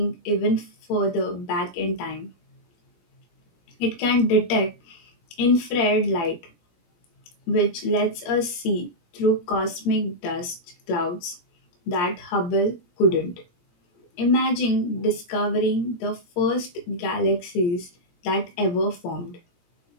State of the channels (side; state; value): right; late; 17 ms